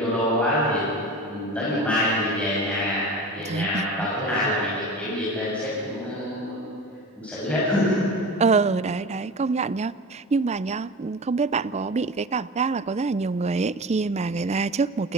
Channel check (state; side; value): normal; both; correlation 0.32